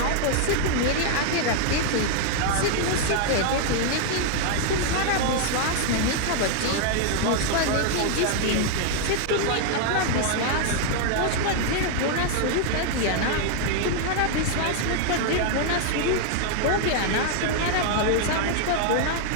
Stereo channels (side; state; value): both; different; correlation 0.00